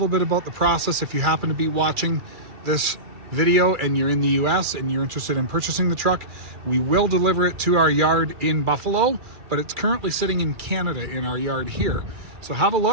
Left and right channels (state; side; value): late; left; 2.3 ms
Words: bit about the process if you happen to be watching this video and you're in the US and you're interested in purchasing the truck. We will deliver it to our yard in Buffalo, but it's currently sitting in Canada in our yard here. So have a